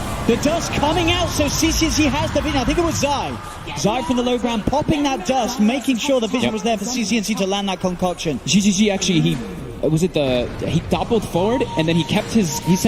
The dust coming out, so CC&C has the vision. I think it was Zai. Zai from the low ground popping that dust, making sure the vision was there for CC&C to land that concoction. zhizhizhi actually, he doubled forward, and then he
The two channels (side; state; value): both; identical; correlation 1.00